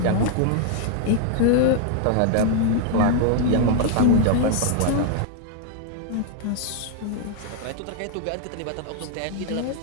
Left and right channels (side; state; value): both; different; correlation 0.00